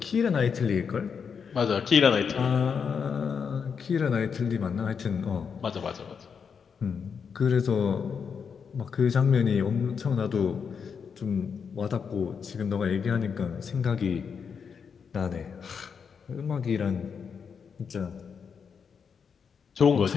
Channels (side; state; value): right; quieter; 6.4 dB